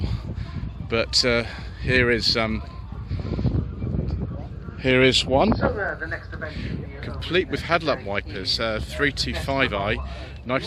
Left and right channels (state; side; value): identical; both; correlation 1.00